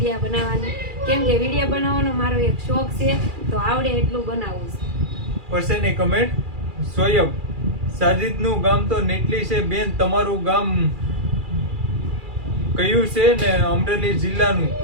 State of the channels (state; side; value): late; left; 2.4 ms